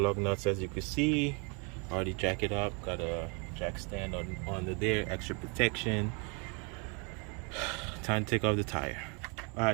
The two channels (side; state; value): left; quieter; 33.8 dB